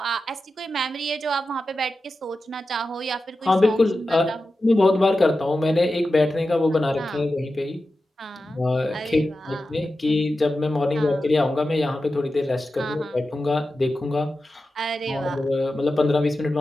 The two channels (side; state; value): both; normal; correlation 0.92